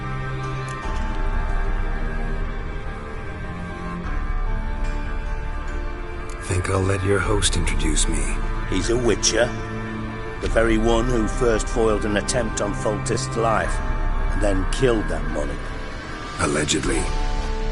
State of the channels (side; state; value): both; identical; correlation 1.00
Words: Think I'll let your host introduce me. He's a witcher. The very one who first foiled an attempt on Foltest's life, and then killed that money. Allegedly.